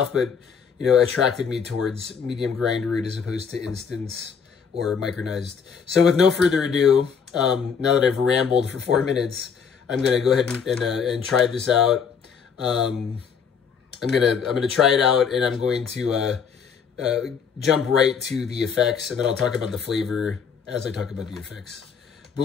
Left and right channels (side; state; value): right; quieter; 6.5 dB